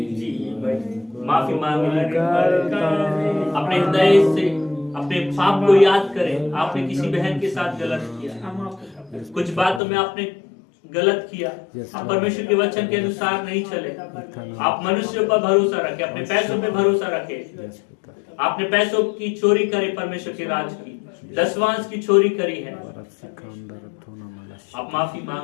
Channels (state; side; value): drops out; right; at 9.8 s